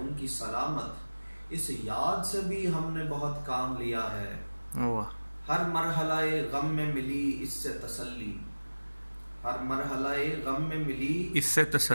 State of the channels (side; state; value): both; inverted; correlation -1.00